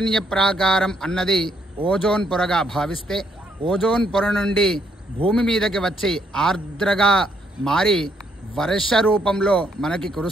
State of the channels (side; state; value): both; normal; correlation 0.72